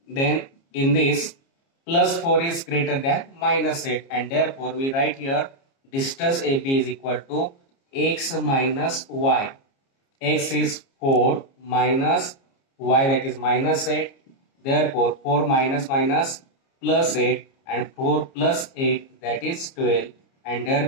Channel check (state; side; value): late; right; 29 ms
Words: Then in this, plus 4 is greater than minus 8, and therefore we write here distance AB is equal to x minus y. X is 4 minus y, that is minus 8. Therefore 4 minus minus plus 8, and 4 plus 8, that is 12, and